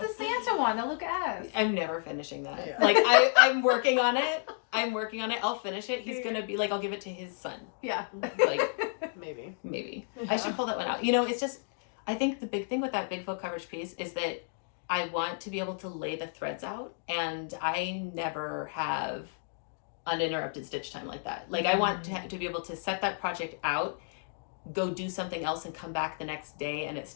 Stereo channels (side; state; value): right; silent; digital silence